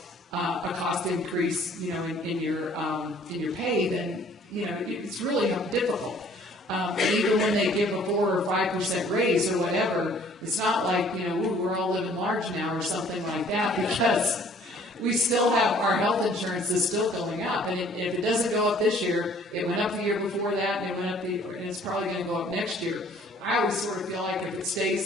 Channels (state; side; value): normal; both; correlation 0.57